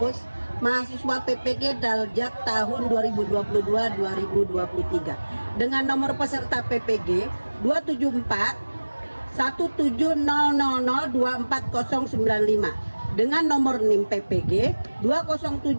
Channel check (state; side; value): inverted; both; correlation -1.00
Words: mahasiswa PPG Daljak tahun 2022-2023 dengan nomor peserta PPG 274 17000249095 dengan nomor NIM PPG